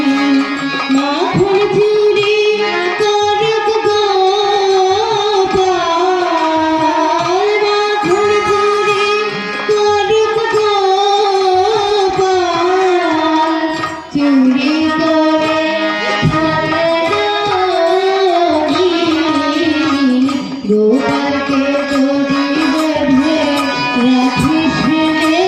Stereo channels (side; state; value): both; identical; correlation 1.00